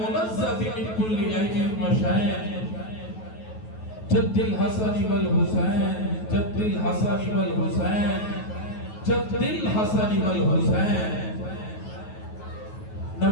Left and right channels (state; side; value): late; right; 9.3 ms